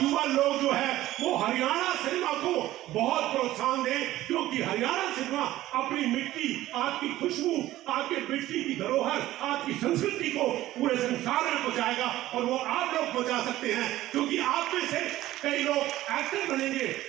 लोग जो है वो हरियाणा सिनेमा को बहुत प्रोत्साहन दें, क्योंकि हरियाणा सिनेमा अपनी मिट्टी, आपकी खुशबू, आपके मिट्टी की धरोहर, आपकी संस्कृति को पूरे संसार में पहुंचाएगा। और वो आप लोग पहुंचा सकते हैं, क्योंकि आप में से कई लोग एक्टर बनेंगे,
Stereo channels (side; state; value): left; quieter; 15.2 dB